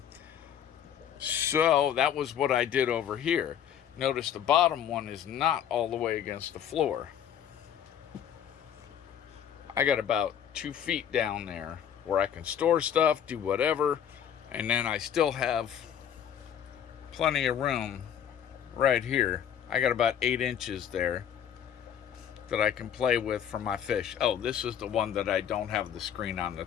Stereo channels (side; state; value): right; quieter; 9.2 dB